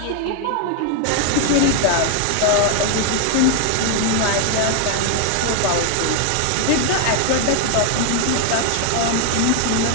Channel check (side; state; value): both; different; correlation 0.00